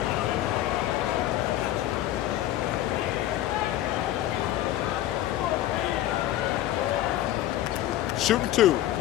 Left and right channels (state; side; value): quieter; right; 13.6 dB